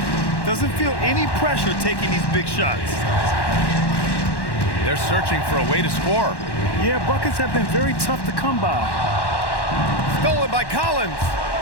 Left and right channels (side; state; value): right; late; 1.1 ms